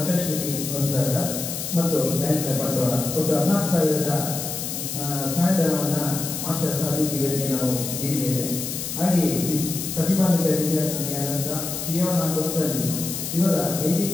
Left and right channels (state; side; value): noise; left; hiss, 5 dB below the sound